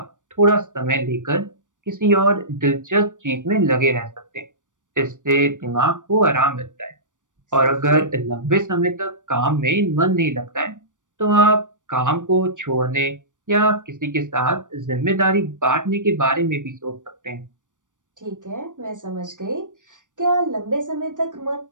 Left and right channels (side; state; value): left; late; 0.87 ms